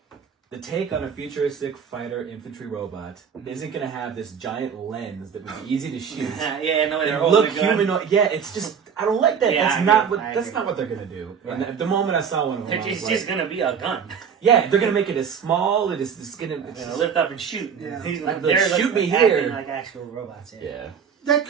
the take on a futuristic fighter infantry robot isn't going to have this giant lens that would be easy to shoot. Yeah, no, they're and look humanoid. Yeah, it's just I don't like that. Yeah, That's not what they're going to do. Right. And at the moment I saw one of them, It's just going to be a gun. yeah, they're going to make it as small. It's going to lift up and shoot. Yeah. He's Like, they're shoot me acting here. like actual robots. yeah. That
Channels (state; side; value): quieter; left; 7.0 dB